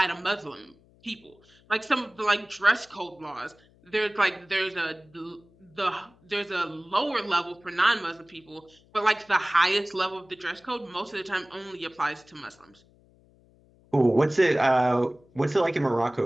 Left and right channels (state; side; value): noise; left; hum, 30 dB below the sound